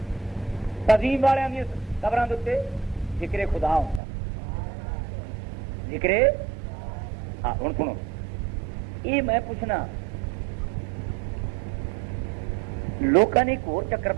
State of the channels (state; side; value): drops out; left; at 4.0 s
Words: تعظیم والوں دیا قبروں کے ذکر خدا ہوتا، ذکر ہاں۔ ہوں سنو یہ میں پوچھنا، لوگوں نے ایک اور چکر